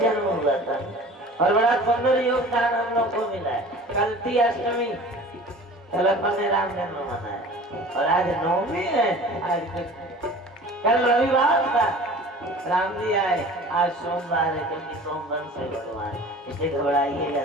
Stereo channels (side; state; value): both; normal; correlation 0.42